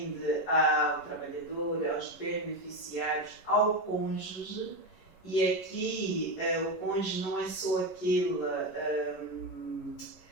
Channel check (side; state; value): right; late; 11 ms